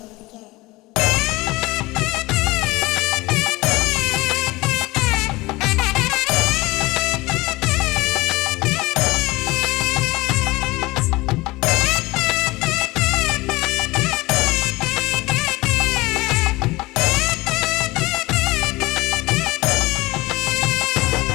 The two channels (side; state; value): right; quieter; 21.1 dB